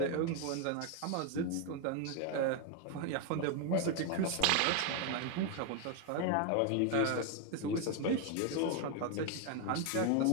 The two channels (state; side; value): different; both; correlation 0.01